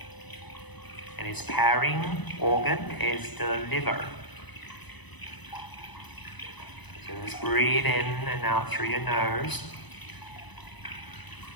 And its pairing organ is the liver. So just breathe in and out through your nose.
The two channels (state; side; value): late; right; 1.0 ms